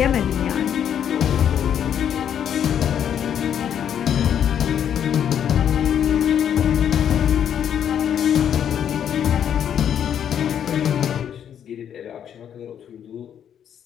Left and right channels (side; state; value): right; quieter; 9.1 dB